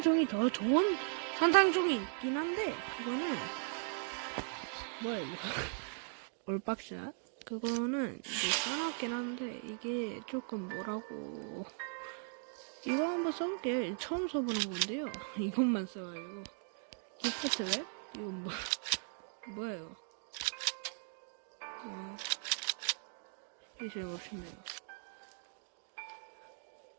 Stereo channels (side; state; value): left; silent; 52 dB below the other